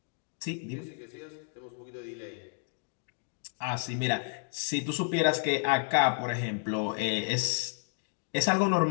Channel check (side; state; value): right; silent; 57 dB below the other